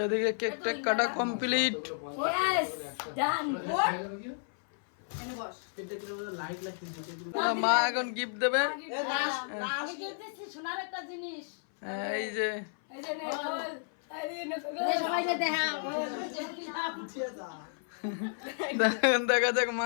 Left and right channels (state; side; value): silent; right; 55 dB below the other